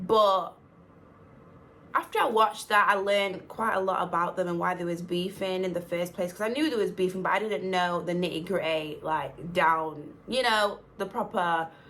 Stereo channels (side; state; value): both; identical; correlation 1.00